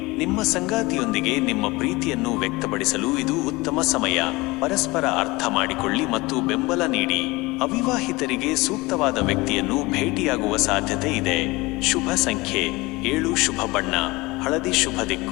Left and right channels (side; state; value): right; quieter; 22.5 dB